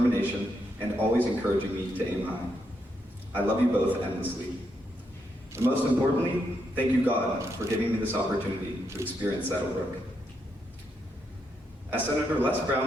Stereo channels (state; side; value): normal; both; correlation 0.80